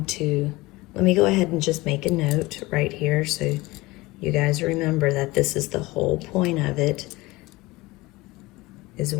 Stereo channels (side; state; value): right; quieter; 21.0 dB